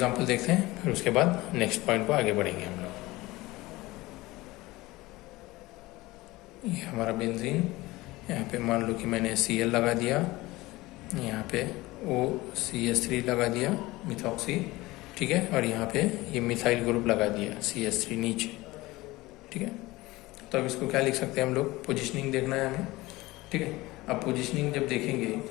देखते हैं, फिर उसके बाद नेक्स्ट पॉइंट को आगे बढ़ेंगे हम लोग। ये हमारा बेंजीन, यहाँ पे मान लो कि मैंने Cl लगा दिया, यहाँ पे OCH3 लगा दिया मिथॉक्सी, ठीक है, और यहाँ पे ये मिथाइल ग्रुप लगा दिया CH3 नीचे, ठीक है। तो अब इसको क्या लिख सकते हैं हम लोग, पोजीशनिंग देखना है हमें, ठीक है। अब पोजीशनिंग जब देखेंगे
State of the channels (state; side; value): quieter; right; 19.9 dB